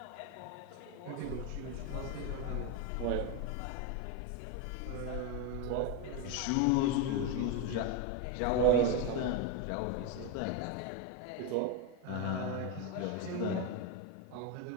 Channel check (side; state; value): both; different; correlation 0.02